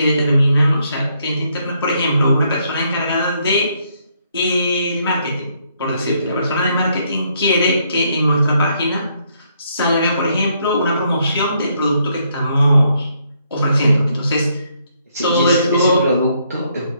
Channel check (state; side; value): inverted; both; correlation -0.73